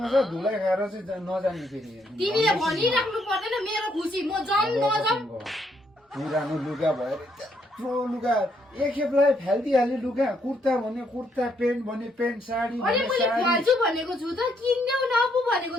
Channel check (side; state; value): both; normal; correlation 0.73